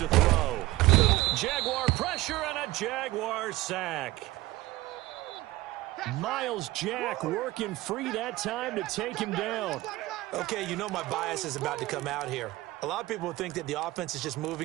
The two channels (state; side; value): quieter; left; 18.8 dB